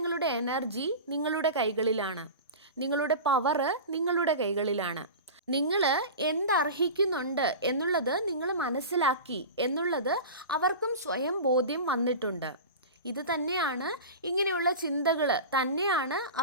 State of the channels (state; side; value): inverted; both; correlation -0.30